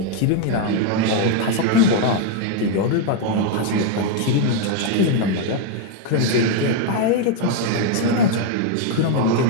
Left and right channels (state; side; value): different; both; correlation 0.01